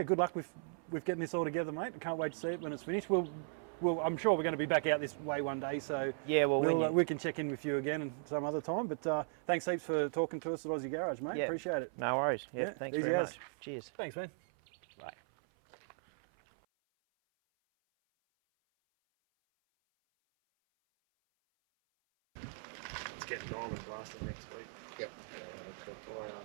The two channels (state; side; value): silent; left; 53 dB below the other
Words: Good luck with getting this all together, mate. I can't wait to see it when it's finished. I'm sure we're going to be back out this way one day, so Yeah. Well, we can check in with you again some other time. But thanks heaps for talking to us at Aussie Garage, mate. Yeah. Appreciate it. no worries. Yeah. Yeah, Thanks easy very as. much. Cheers. Thanks, man. Bye. It's getting diamond blasting next week. Yep.